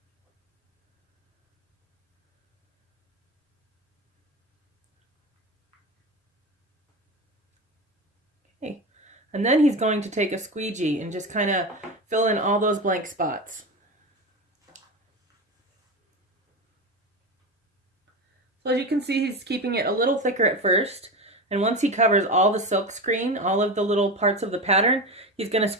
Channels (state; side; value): normal; both; correlation 0.22